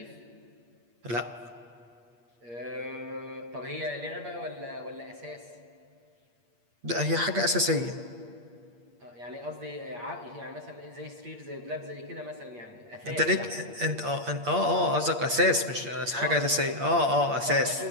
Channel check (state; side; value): late; left; 8.5 ms